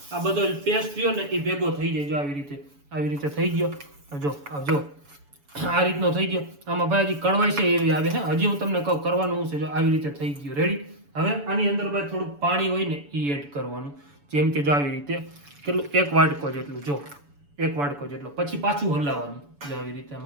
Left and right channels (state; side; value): late; left; 7.0 ms